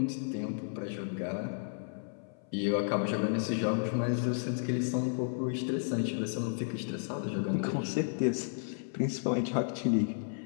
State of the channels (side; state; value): right; silent; 56 dB below the other